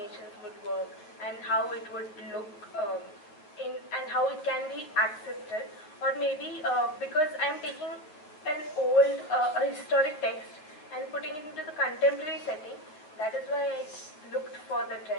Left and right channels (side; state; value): right; late; 9.7 ms